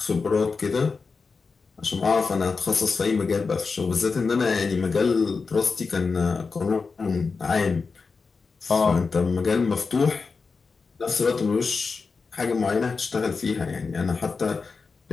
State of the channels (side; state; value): right; quieter; 4.7 dB